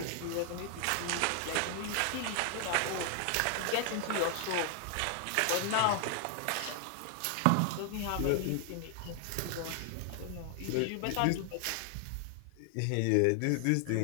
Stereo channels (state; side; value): different; both; correlation 0.00